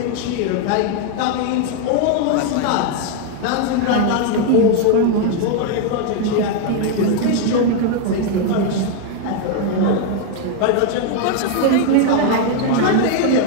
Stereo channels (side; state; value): both; different; correlation 0.00